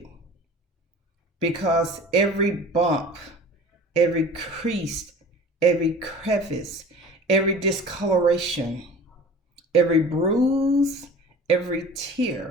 Because every bump, every crease, every crevice, every discoloration, every bruise, every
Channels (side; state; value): both; normal; correlation 0.42